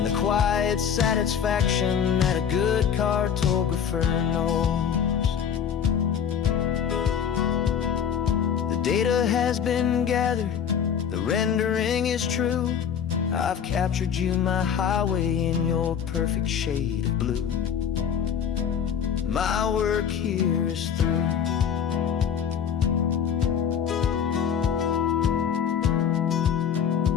the quiet satisfaction that a good cartographer knows. The data has been gathered, the rendering is true. I've captured you, my highway, in your perfect shade of blue. My work here is through.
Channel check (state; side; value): quieter; right; 8.0 dB